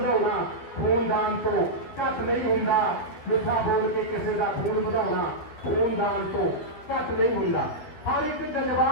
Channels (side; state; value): right; late; 12 ms